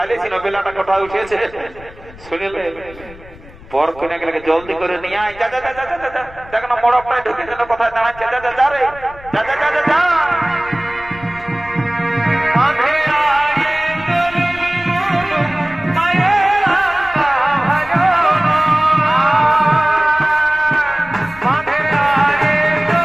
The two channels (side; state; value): left; noise; rumble, 20 dB below the sound